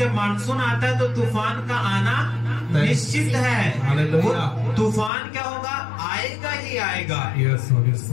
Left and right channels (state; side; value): drops out; right; at 5.1 s